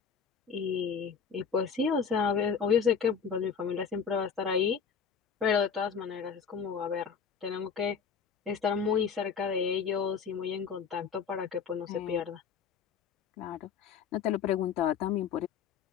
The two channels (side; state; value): right; quieter; 6.6 dB